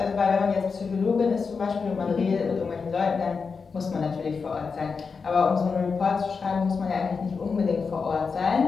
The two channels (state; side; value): quieter; right; 5.1 dB